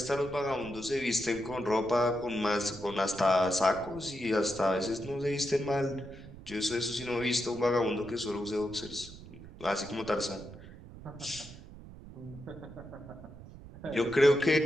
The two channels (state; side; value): noise; right; rumble, 16 dB below the sound